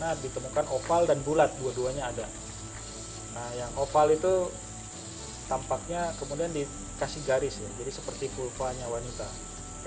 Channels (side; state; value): both; identical; correlation 1.00